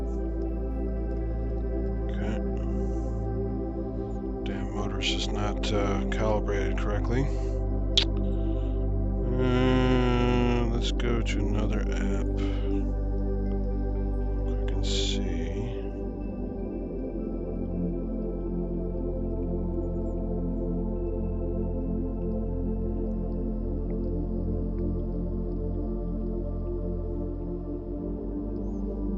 Okay. Damn motor's just not calibrated correctly. Let's go to another app. I can see.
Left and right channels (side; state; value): both; identical; correlation 1.00